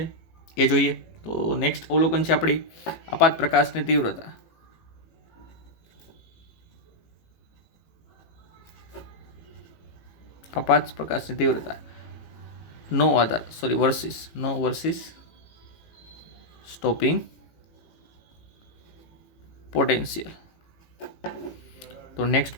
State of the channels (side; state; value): right; late; 18 ms